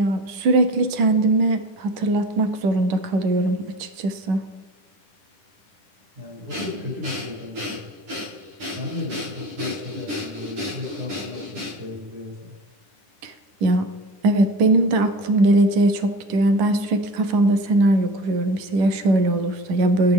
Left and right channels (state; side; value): late; left; 10 ms